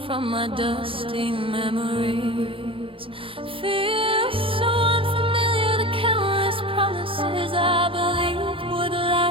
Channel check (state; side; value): late; left; 0.26 ms